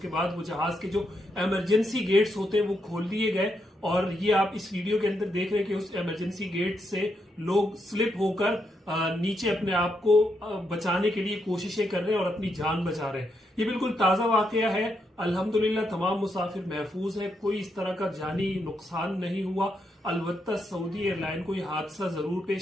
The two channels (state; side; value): normal; both; correlation 0.80